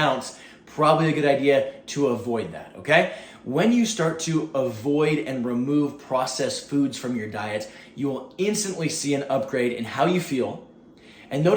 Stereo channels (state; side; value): identical; both; correlation 1.00